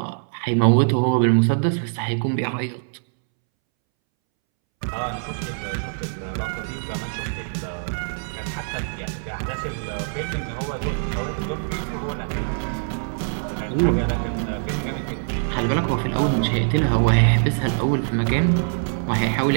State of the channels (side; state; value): left; silent; 63 dB below the other